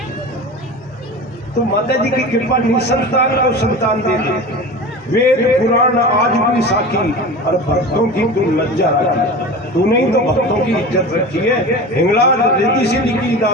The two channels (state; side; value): normal; both; correlation 0.32